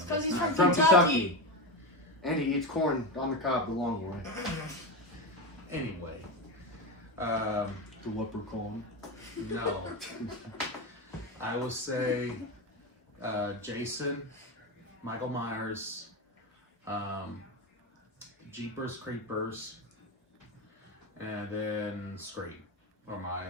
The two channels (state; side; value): normal; both; correlation 0.17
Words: because he's From from Kentucky. And he eats corn on the cob the long way. Anyway, The leprechaun. no. I would say Jason, Michael Myers, Jeepers Creepers, and then Scream. Or my